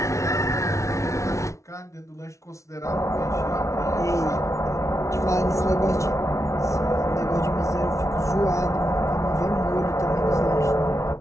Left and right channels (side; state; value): right; late; 0.14 ms